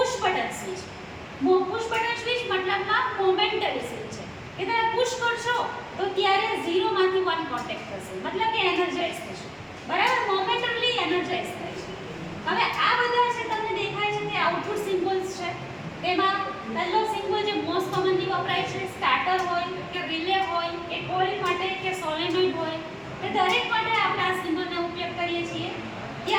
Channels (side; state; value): both; identical; correlation 1.00